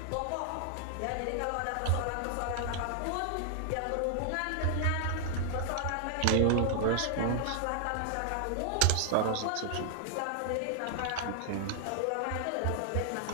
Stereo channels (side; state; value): both; different; correlation 0.00